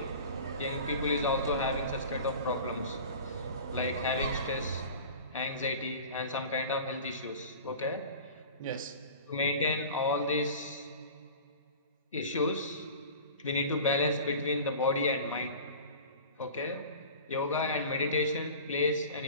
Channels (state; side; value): inverted; both; correlation -0.39